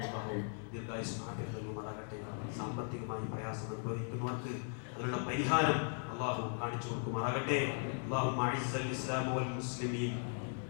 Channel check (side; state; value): right; silent; 52 dB below the other